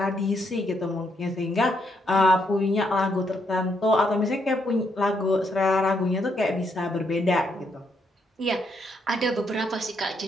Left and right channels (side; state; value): both; normal; correlation 0.76